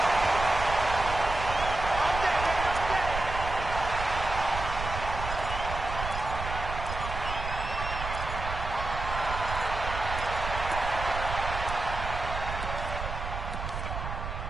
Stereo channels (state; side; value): noise; right; rumble, 6 dB below the sound